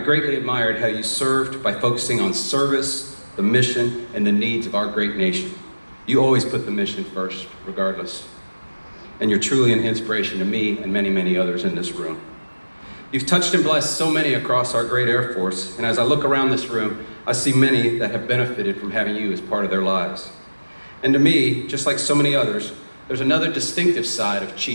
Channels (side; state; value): both; inverted; correlation -1.00